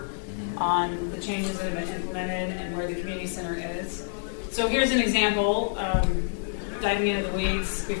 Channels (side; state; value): right; silent; 60 dB below the other